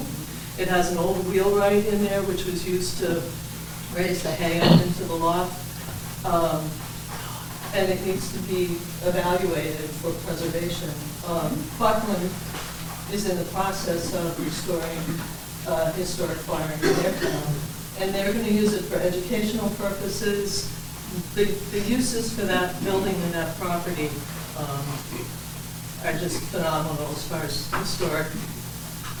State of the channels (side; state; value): both; identical; correlation 1.00